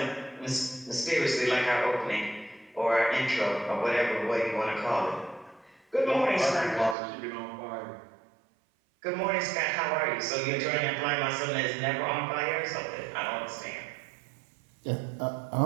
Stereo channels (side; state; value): left; drops out; at 7.0 s